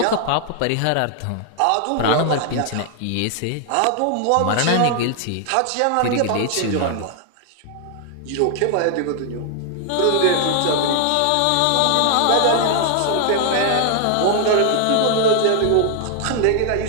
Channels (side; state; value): both; different; correlation 0.00